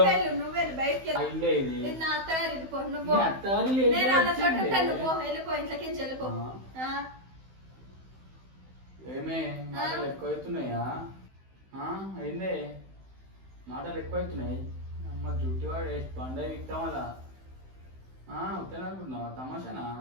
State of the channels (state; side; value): late; left; 15 ms